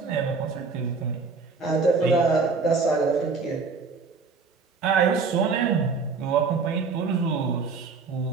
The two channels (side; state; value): left; quieter; 4.7 dB